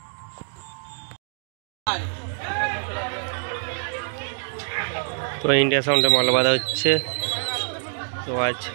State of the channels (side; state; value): left; silent; digital silence